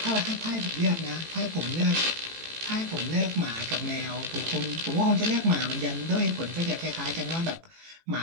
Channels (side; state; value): left; late; 18 ms